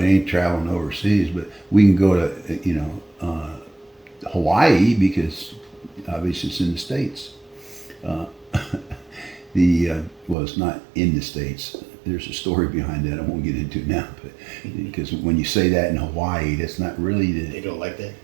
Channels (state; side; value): drops out; left; at 10.4 s